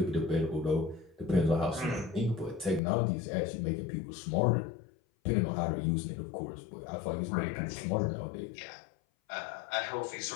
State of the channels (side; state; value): right; drops out; at 2.8 s